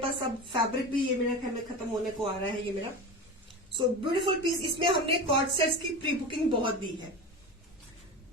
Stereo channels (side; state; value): both; normal; correlation 0.27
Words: अब फैब्रिक भी ये मेरा ख्याल में खत्म होने को आ रहा है ये मेरा। So beautiful piece. इसमें हमने कॉर्ड सेट्स की प्री बुकिंग बहुत दी है।